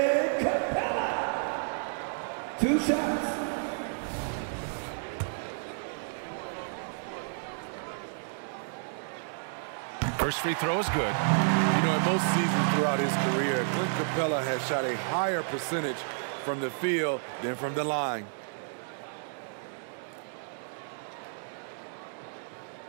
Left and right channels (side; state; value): left; silent; digital silence